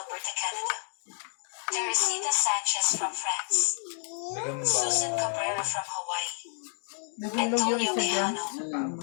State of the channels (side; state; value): right; silent; 58 dB below the other